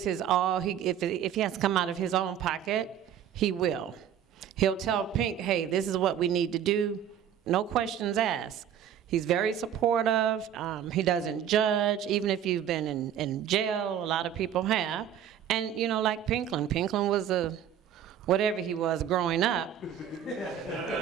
his all. If he has to come out of his own pocket, he will. He'll tell Pink, hey, this is what we need to do. No questions asked. He's very supportive. He doesn't judge, even if you've been in jail. A lot of people have. And, like Pinklin. Pinklin was whatever he was growing up.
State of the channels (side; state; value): left; quieter; 9.5 dB